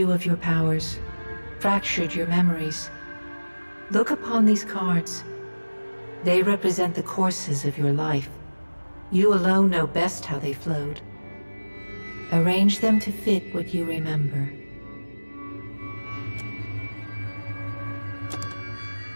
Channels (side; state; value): both; inverted; correlation -1.00